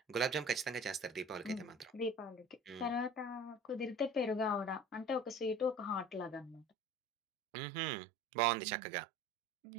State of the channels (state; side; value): drops out; left; at 6.7 s